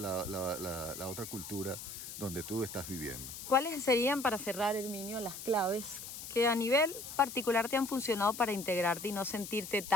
otra cultura donde tú estás viviendo. ¿Cuáles serían, para cerrar, Herminio, las claves que a nivel particular te han funcionado para integrarte y no sentirte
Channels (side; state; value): left; noise; hiss, 10 dB below the sound